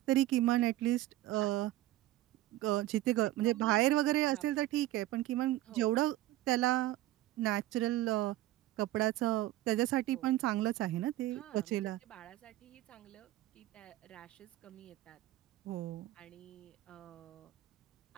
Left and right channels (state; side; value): quieter; left; 15.5 dB